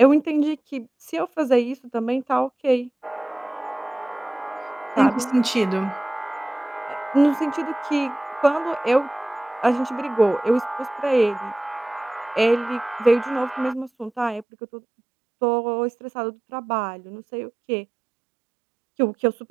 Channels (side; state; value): left; drops out; at 14.5 s